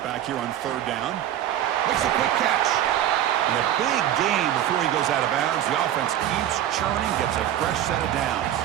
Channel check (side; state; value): left; quieter; 11.4 dB